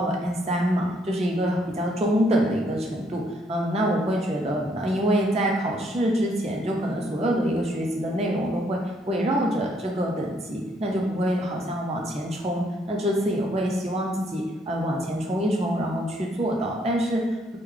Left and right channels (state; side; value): normal; both; correlation 0.70